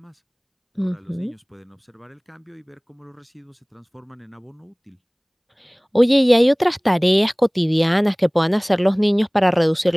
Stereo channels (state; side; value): identical; both; correlation 1.00